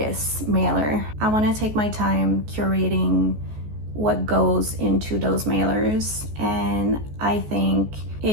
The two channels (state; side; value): late; left; 14 ms